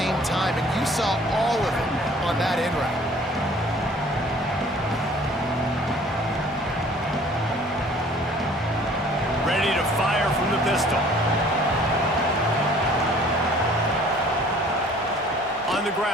time, and you saw all of it on that in route. Ready to fire from the pistol. On the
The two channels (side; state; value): both; normal; correlation 0.53